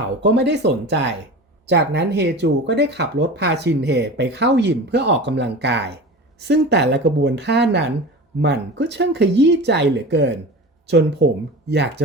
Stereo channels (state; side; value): normal; both; correlation 0.33